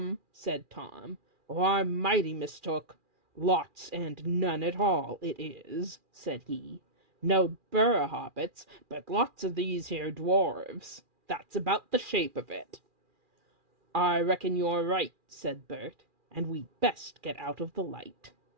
said Tom, "or I'm mighty mistook. Lots and none at all, it is," said he. "No burr hobbits, but lots of these here dwarves. That's about the shape of it." "I reckon you're right," said Bert, "and we'd best get out of the light."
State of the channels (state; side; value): late; left; 2.4 ms